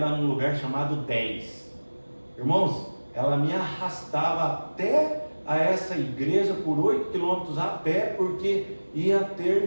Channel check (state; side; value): inverted; both; correlation -1.00